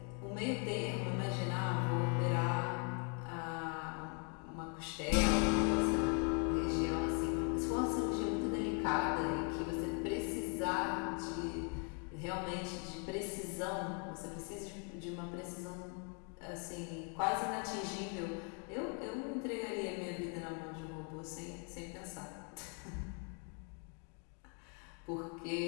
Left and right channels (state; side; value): quieter; right; 38.8 dB